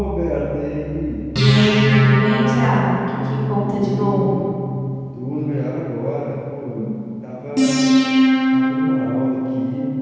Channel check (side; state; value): both; identical; correlation 1.00